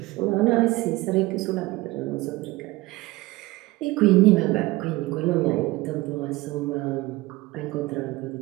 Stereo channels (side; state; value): left; quieter; 19.9 dB